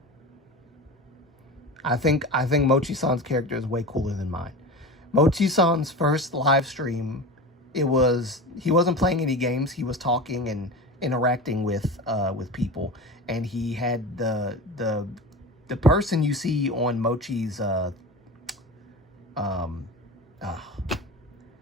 I think Mochi-san's character is way cooler than mine. Mochi-san's first live stream, he wasn't playing any games. He was talking and interacting with people, and he had the person you see on Mochi's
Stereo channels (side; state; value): both; normal; correlation 0.29